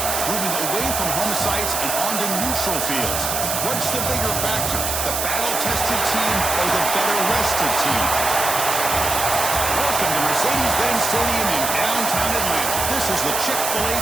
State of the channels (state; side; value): noise; right; hiss, 1 dB below the sound